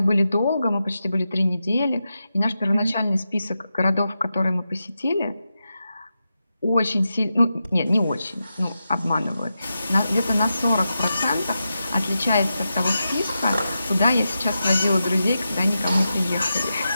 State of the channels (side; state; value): both; inverted; correlation -0.89